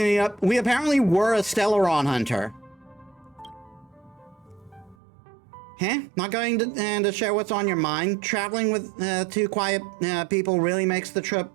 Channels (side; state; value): left; drops out; at 5.0 s